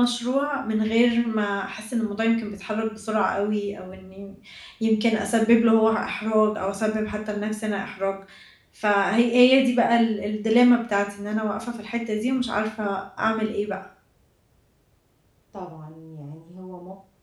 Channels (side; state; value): both; identical; correlation 1.00